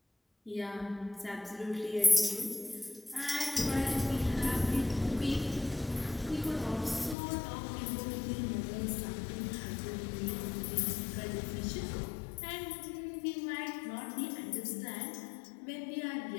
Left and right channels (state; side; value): drops out; right; at 7.2 s